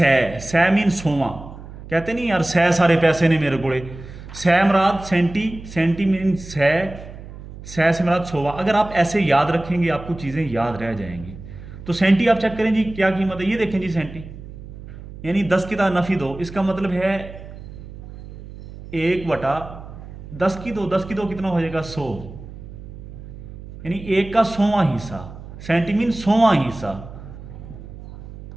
मीन 100वां, कहते नहीं यार सै सारे पैसे ने मेरे कोड़े, सै मराद सेंटी, सेंटी मीन सै से मराद 100वां। अगर आप ऐसे याद रखेंगे आपको चीज़ें याद रह जाएंगी। तो सेंटी आप चेक करें जी क्या कीमत है, ये देखें जी सेंटी, यानी 10 की ताकत नफी 2, इसका मतलब है 1/10 की 2, 10 की 2 कितना हो जाएगा 100, यानी 1 का 100वां हिस्सा, सेंटीमीन 100वां हिस्सा।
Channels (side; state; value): right; noise; hum, 14 dB below the sound